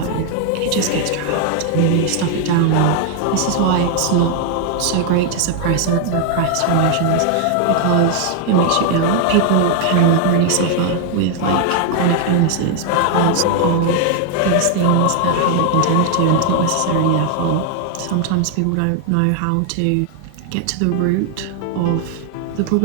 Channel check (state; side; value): different; both; correlation 0.00